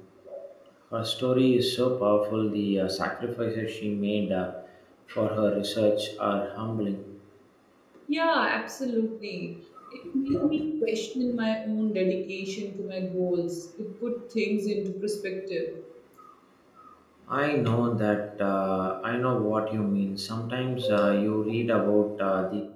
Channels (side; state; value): both; identical; correlation 1.00